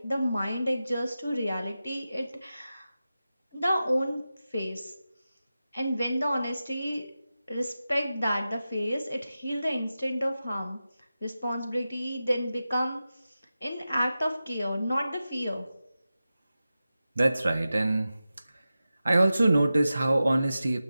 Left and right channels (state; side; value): inverted; both; correlation -0.93